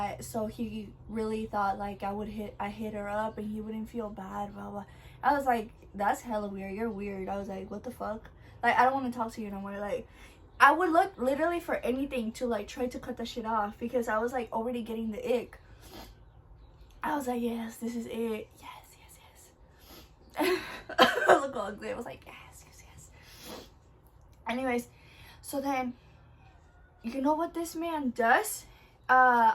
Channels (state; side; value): identical; both; correlation 1.00